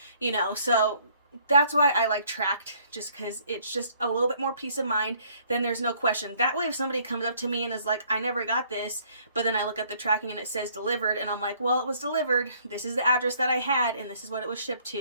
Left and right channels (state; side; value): inverted; both; correlation -0.62